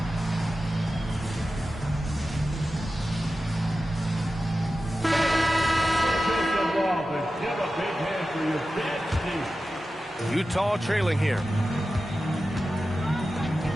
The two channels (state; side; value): normal; both; correlation 0.93